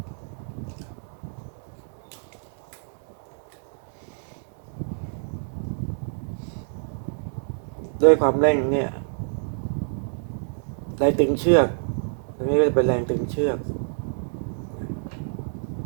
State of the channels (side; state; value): left; silent; digital silence